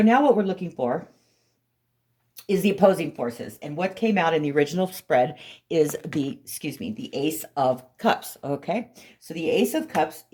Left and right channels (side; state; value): both; identical; correlation 1.00